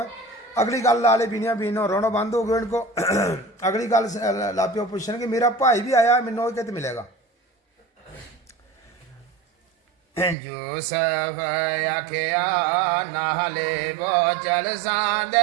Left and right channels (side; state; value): left; drops out; at 10.4 s